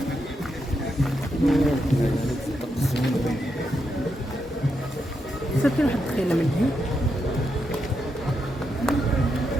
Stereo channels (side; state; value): both; normal; correlation 0.83